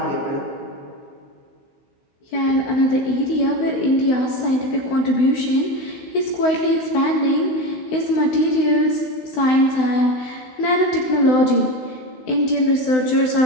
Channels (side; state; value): right; late; 16 ms